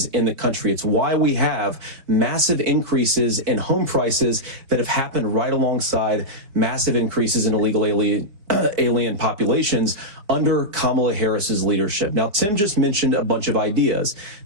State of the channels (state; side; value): late; left; 4.7 ms